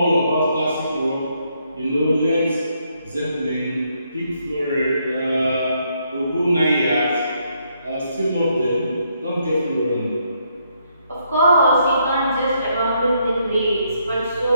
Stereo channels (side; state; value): both; inverted; correlation -0.74